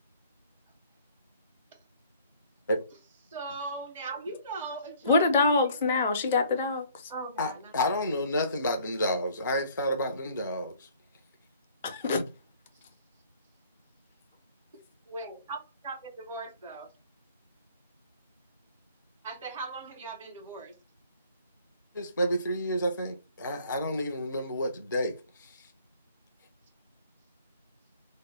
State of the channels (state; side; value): inverted; both; correlation -0.56